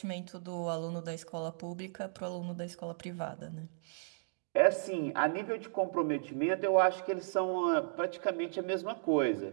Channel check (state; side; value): silent; left; digital silence